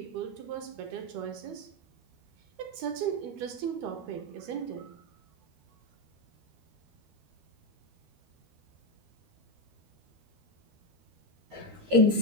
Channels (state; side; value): late; left; 12 ms